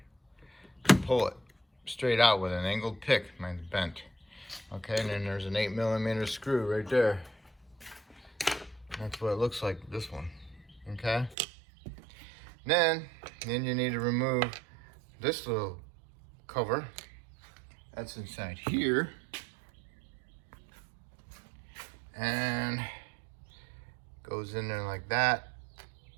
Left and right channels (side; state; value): left; drops out; at 11.4 s